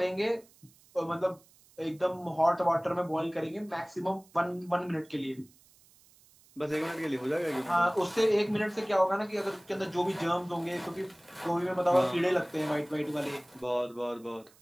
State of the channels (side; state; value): right; noise; hiss, 28 dB below the sound